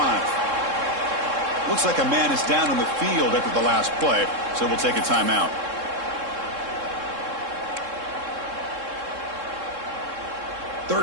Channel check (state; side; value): late; left; 3.7 ms